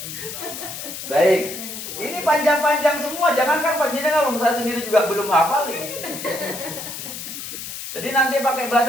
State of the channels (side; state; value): left; noise; hiss, 9 dB below the sound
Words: Baik. Ini panjang-panjang semua. Jangankan panjenengan, saya sendiri juga belum hafal ini. Jadi nanti pakai